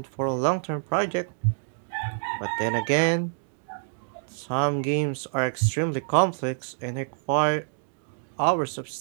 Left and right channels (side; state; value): left; silent; digital silence